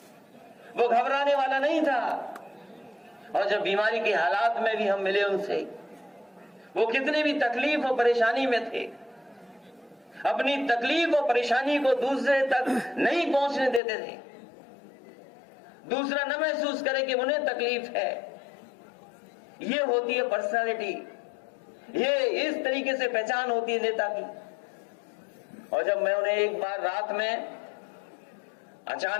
वो घबराने वाला नहीं था। और जब बीमारी के हालात में भी हम मिले उनसे, वो कितने भी तकलीफ और परेशानी में थे, अपनी तकलीफ और परेशानी को दूसरे तक नहीं पहुंचने देते थे, दूसरा न महसूस करे कि उन्हें तकलीफ है। ये होती है पर्सनालिटी, ये इस तरीके से पहचान होती है नेता की। और जब मैं उन्हें एक बार रात में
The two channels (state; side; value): drops out; right; at 13.8 s